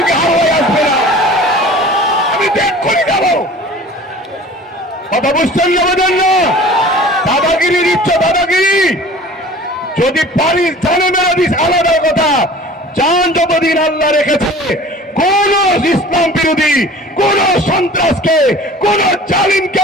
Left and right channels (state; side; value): normal; both; correlation 0.44